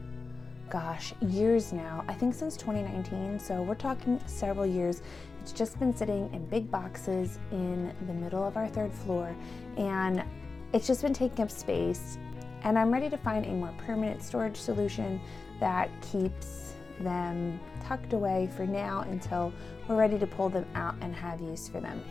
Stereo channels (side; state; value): right; quieter; 4.1 dB